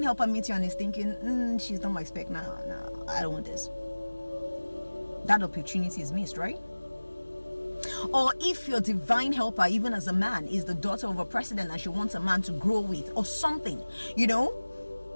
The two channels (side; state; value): both; inverted; correlation -1.00